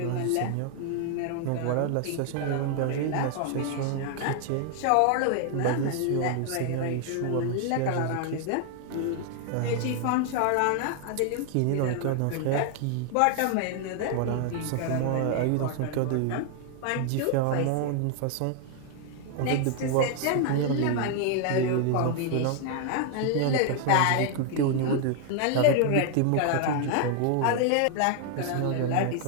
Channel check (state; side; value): different; both; correlation 0.00